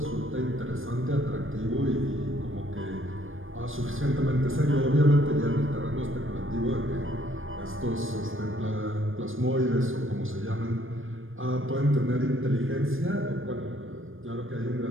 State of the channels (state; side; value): late; left; 0.59 ms